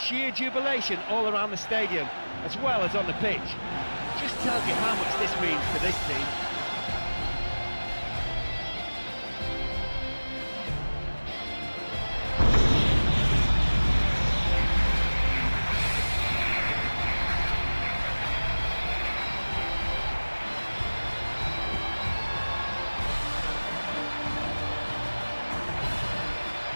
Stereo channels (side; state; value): both; inverted; correlation -1.00